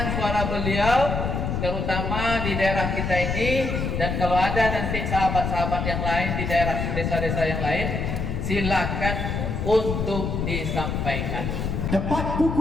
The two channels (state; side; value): noise; left; rumble, 2 dB below the sound